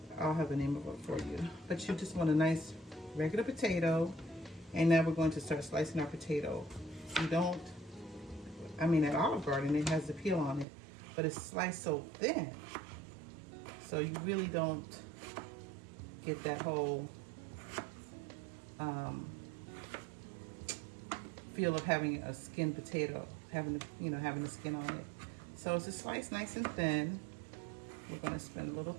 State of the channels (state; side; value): drops out; left; at 10.7 s